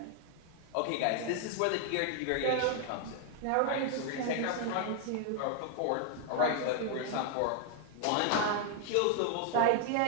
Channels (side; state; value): both; different; correlation 0.00